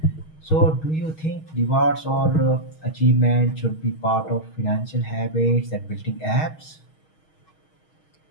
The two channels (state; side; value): late; right; 6.3 ms